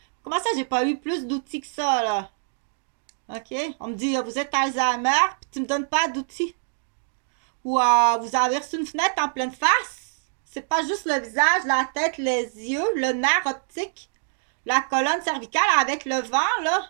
Comment ça, j'ai pas eu plus d'outils que ça, là? OK? On me dit, vous êtes Alzheimer, puis tu me donnes pas d'outils. Ou vous avez reçu une fenêtre en pleine face. C'est pas juste le visage, la tête, les yeux, le nerf optique, la colonne cervicale avec le vent, là.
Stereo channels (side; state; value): left; silent; digital silence